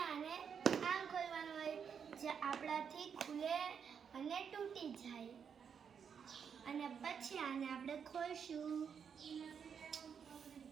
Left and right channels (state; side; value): quieter; left; 7.0 dB